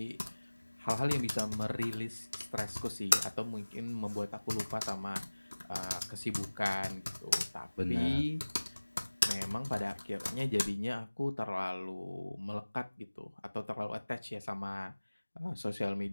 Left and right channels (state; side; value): inverted; both; correlation -1.00